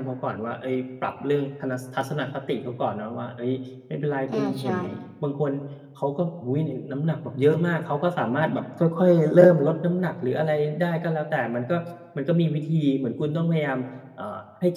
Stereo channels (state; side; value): identical; both; correlation 1.00